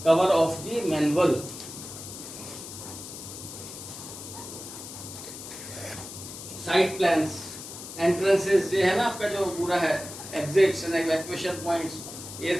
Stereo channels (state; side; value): noise; left; hiss, 11 dB below the sound